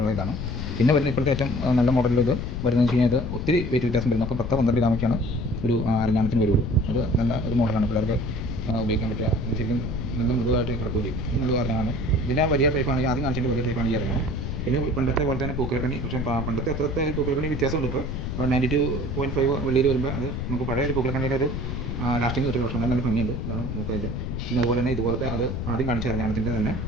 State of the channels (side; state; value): left; noise; rumble, 4 dB below the sound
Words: ഇതാണ്. പിന്നെ വരുന്ന ഇപ്പോഴത്തെ ഏറ്റവും നല്ല മോഡലിൽ ഇത് വരുന്നതെന്ന് വെച്ച് കഴിഞ്ഞാൽ ഇത് ഒത്തിരി വെയിറ്റ് വ്യത്യാസം വരും. നമുക്ക് 10-12 ഗ്രാമൊക്കെയാണ് ഒരു അരഞ്ഞാണത്തിന് വരുള്ളൂ. അത് നല്ല ഒരു മോഡലാണ് പിള്ളേർക്ക് ഉപയോഗിക്കാൻ പറ്റുക. ശരിക്കും നല്ല മൃദുവായിട്ട് കിടക്കുകയും ചെയ്യും. ഇത് നല്ല അരഞ്ഞാണ്. ഇതിൻ്റെ വലിയ ടൈപ്പാണെങ്കിൽ ആദ്യം കാണിച്ചതിൻ്റെ വലിയ ടൈപ്പാണ് ഈ അരഞ്ഞാണ്. പിന്നെ പണ്ടത്തെ പോലെ തന്നെ പൂക്കലക്കണ്ണി, പക്ഷേ പണ്ടത്തെ അത്രത്തെ പൂക്കലക്കണ്ണി വ്യത്യാസമുണ്ട്. ഇപ്പോൾ 92.5 വെള്ളിയിൽ വരുമ്പോൾ അത് നമുക്ക് പഴയ ഒരു പൂക്കലക്കണ്ണിയുടെ ഒരു ലാസ്റ്റിംഗ് കിട്ടുന്ന പക്ഷേ നല്ല ഭംഗിയുണ്ട്. ഇതാണ് നമുക്കതിൻ്റെ. പിന്നെ അതുപോലെ തന്നെ ഇതുപോലത്തെ അത് ആദ്യം കാണിച്ച അരഞ്ഞാണത്തിൻ്റെ തന്നെ